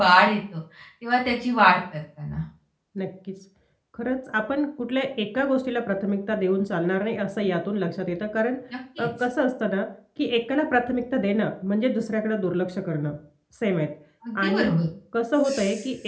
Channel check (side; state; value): both; identical; correlation 1.00